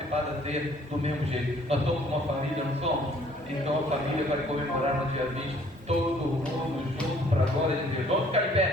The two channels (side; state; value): both; normal; correlation 0.59